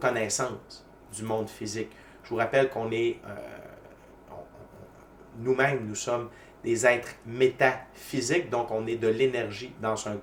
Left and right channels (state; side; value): identical; both; correlation 1.00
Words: du monde physique. Je vous rappelle qu'on est, nous-mêmes, nous sommes des êtres métaphysiques, donc on est de l'énergie dans un